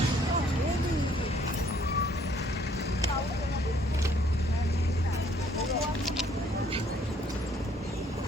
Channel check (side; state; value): both; normal; correlation 0.63